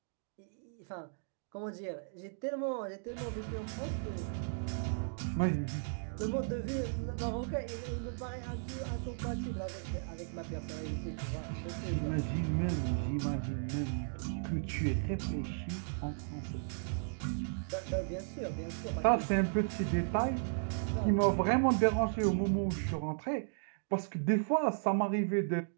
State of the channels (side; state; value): left; silent; digital silence